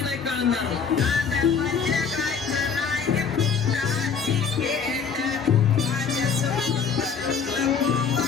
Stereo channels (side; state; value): right; quieter; 6.2 dB